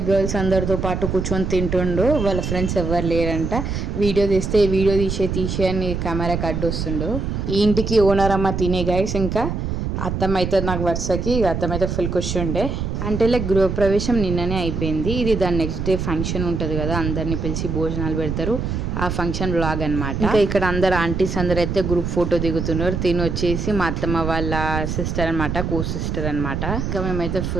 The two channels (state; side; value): noise; right; rumble, 3 dB below the sound